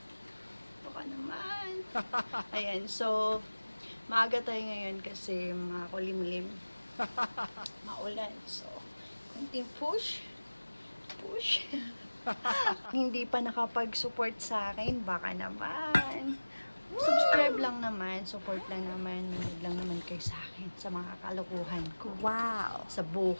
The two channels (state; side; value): inverted; both; correlation -1.00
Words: Baka naman. Ayan, so, maaga tayo ngayon kasi makulimlim. Maulan. So, konting push. Push. Hindi pa nakapag-support sa akin, baka naman. Subscribe lang naman, support lang naman, manood lang naman kayo sa akin sa mga kalokohan ko. Wow. Sa